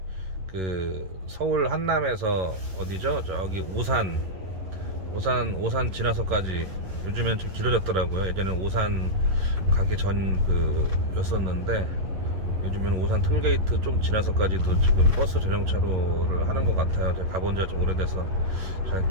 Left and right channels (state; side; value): late; left; 11 ms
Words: 그 서울 한남에서 어디죠? 저기 오산 지나서까지, 요즘엔 좀 길어졌더라고요. 예전엔 오산 가기 전 였었는데 요즘은 오산 톨게이트 좀 지나서까지도 지금 버스 전용차로를 하는 것 같아요. 제가 가본 지가 좀 오래돼서 잘